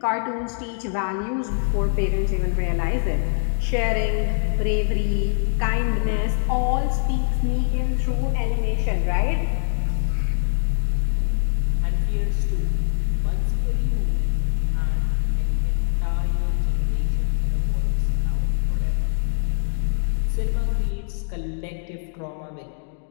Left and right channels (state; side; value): silent; right; digital silence